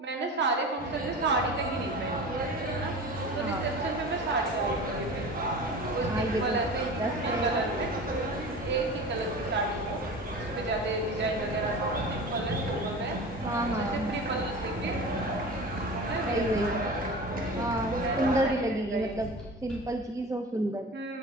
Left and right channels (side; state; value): both; normal; correlation 0.34